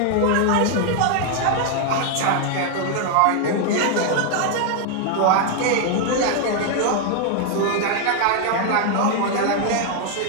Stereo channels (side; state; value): both; different; correlation 0.00